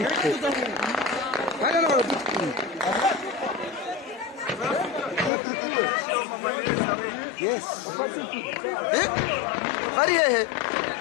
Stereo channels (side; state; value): right; drops out; at 5.3 s